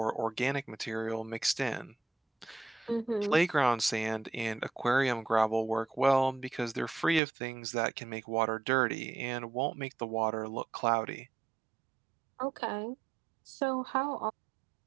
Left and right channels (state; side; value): drops out; left; at 7.2 s